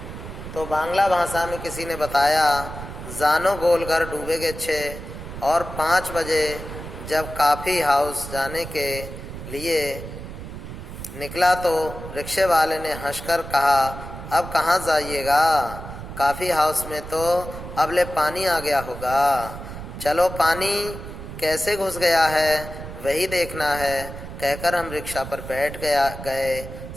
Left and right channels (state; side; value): noise; right; rumble, 10 dB below the sound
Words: तो बांग्ला भाषा में किसी ने बताया जानो गोलघर डूबेगे छे। और 5 बजे जब काफ़ी हाउस जाने के लिए निकला तो रिक्शे वाले ने हंसकर कहा, अब कहाँ जाइएगा? काफ़ी हाउस में तो अब ले पानी आ गया होगा। चलो पानी कैसे घुस गया है वही देखना है, कहकर हम रिक्शा पर बैठ गए।